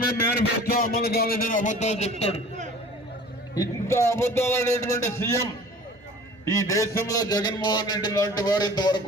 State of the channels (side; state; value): both; normal; correlation 0.45